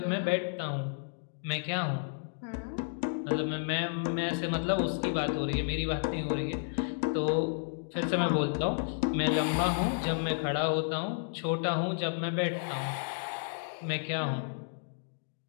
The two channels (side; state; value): right; silent; digital silence